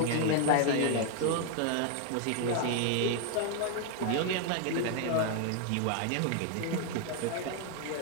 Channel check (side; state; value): both; different; correlation 0.00